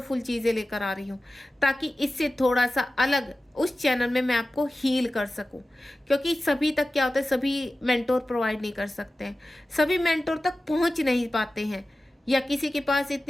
चीज़ें लेकर आ रही हूँ, ताकि इससे थोड़ा सा अलग उस चैनल में मैं आपको हील कर सकूं। क्योंकि सभी तक क्या होता है, सभी मेंटोर प्रोवाइड नहीं कर सकते हैं, सभी मेंटोर तक पहुँच नहीं पाते हैं, या किसी के पास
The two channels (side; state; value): both; normal; correlation 0.95